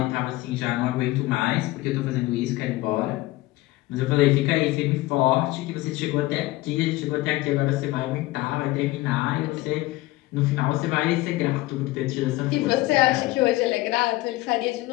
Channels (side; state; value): right; quieter; 18.9 dB